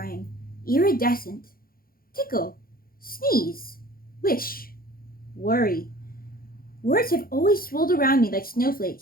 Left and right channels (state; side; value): late; right; 0.42 ms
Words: iridescent, tickle, sneeze, wish, worry. Words have always swirled around me like